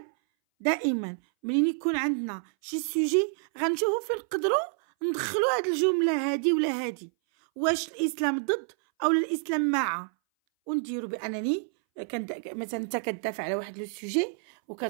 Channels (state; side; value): silent; left; 59 dB below the other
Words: دائما منين يكون عندنا شي سوجي غنشوفو فين نقدروا ندخلو هاد الجمله هادي ولا هادي، واش الاسلام ضد او الاسلام مع، ونديرو بانني مثلا انت كتدافع على واحد لو سوجي